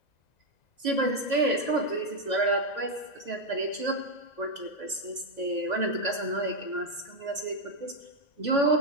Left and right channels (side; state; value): right; late; 2.0 ms